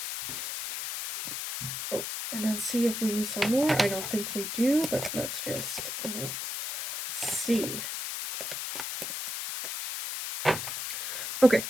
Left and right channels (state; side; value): noise; left; hiss, 4 dB below the sound